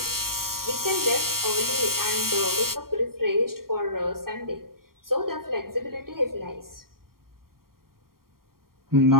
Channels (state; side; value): late; left; 0.93 ms